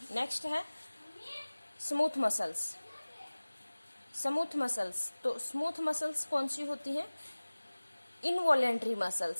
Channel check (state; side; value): inverted; both; correlation -1.00